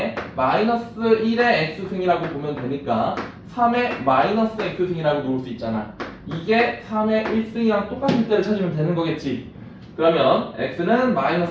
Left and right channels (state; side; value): identical; both; correlation 1.00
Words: 마이너스 1의 x승이라고 보면 되니까 3의 마이너스 x승이라고 놓을 수 있잖아. 이게 3의 1승이랑 똑같을 때를 찾으면 되는 거겠지. 그러면 x는